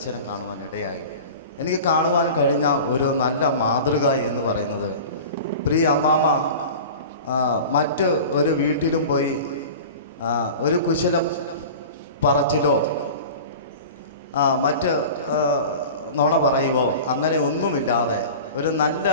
കാണുവാൻ ഇടയായി. എനിക്ക് കാണുവാൻ കഴിഞ്ഞ ഒരു നല്ല മാതൃക എന്ന് പറയുന്നത്, പ്രിയ അമ്മാമ മറ്റ് ഒരു വീട്ടിലും പോയി ഒരു കുശല പറച്ചിലോ മറ്റ് നുണ പറയുവോ അങ്ങനെ ഒന്നുമില്ലാതെ ഒരു നല്ല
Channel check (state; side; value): inverted; both; correlation -0.36